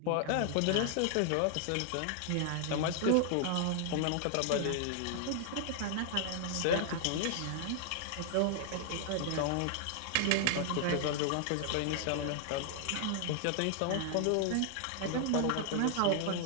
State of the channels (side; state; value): both; different; correlation 0.00